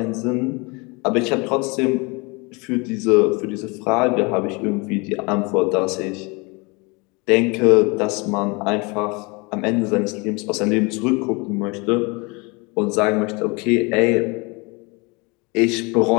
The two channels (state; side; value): quieter; right; 28.2 dB